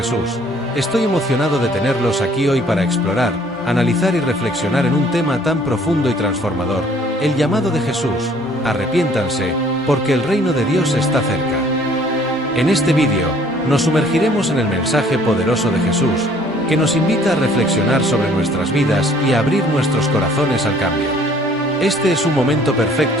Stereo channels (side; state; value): both; normal; correlation 0.58